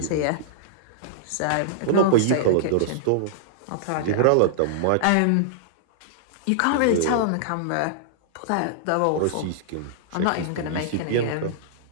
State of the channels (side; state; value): both; different; correlation -0.02